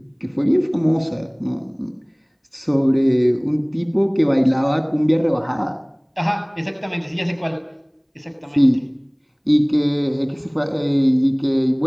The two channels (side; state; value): both; identical; correlation 1.00